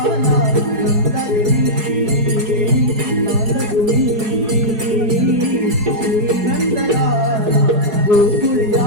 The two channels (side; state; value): left; late; 4.7 ms